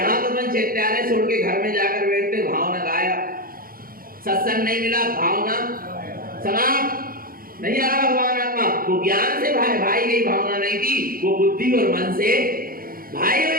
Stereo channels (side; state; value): left; late; 0.42 ms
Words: तो मन चैत्यालय छोड़ के घर में जाकर बैठते, भावना गायब, सत्संग नहीं मिला, भावना समाप्त। नहीं आ रहा भगवान आत्मा। वो ज्ञान से भाई गई भावना नहीं थी, वो बुद्धि और मन से भाई